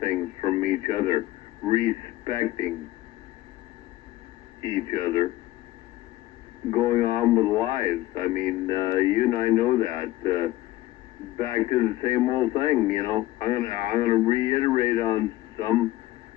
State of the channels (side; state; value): right; quieter; 16.7 dB